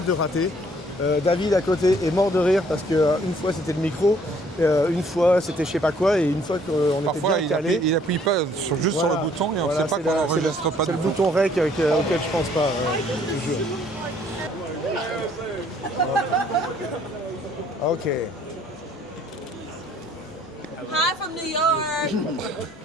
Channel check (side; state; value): both; normal; correlation 0.61